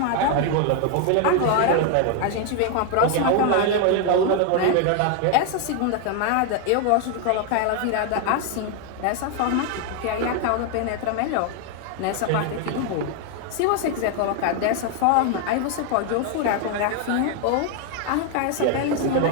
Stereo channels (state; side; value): different; both; correlation 0.01